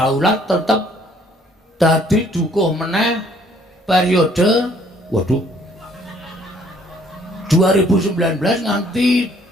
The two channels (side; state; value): both; normal; correlation 0.61